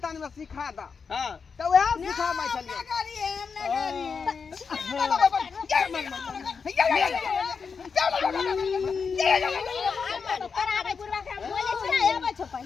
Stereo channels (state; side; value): quieter; right; 5.6 dB